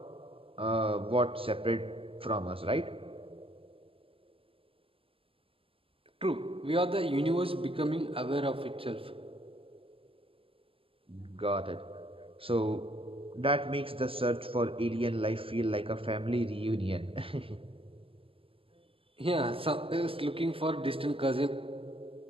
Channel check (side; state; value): left; late; 0.26 ms